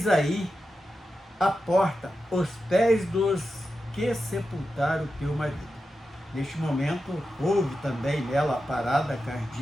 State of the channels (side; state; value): both; normal; correlation 0.90